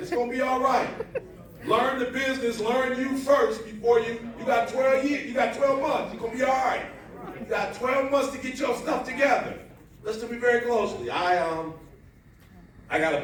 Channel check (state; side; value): identical; both; correlation 1.00